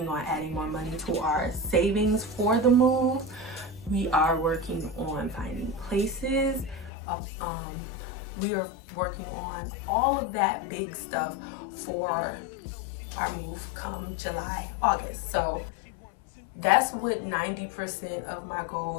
on adding more money to our savings for the move. We are working on finding places. We are working on all of that big stuff for our move come July, August. So that's what 90% of my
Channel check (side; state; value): right; drops out; at 6.9 s